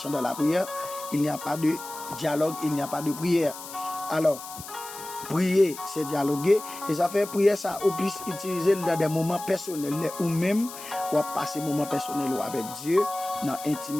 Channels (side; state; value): left; noise; hiss, 13 dB below the sound